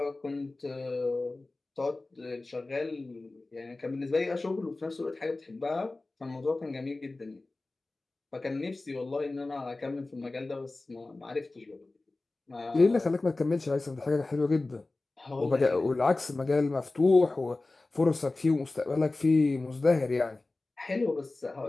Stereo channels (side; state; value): right; quieter; 3.2 dB